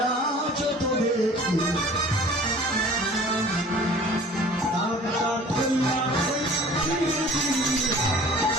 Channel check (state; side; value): normal; both; correlation 0.47